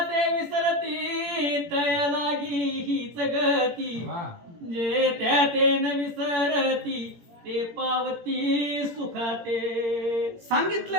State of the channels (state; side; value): late; left; 17 ms